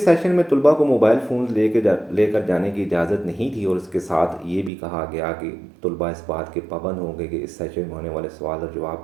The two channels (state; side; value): drops out; left; at 4.7 s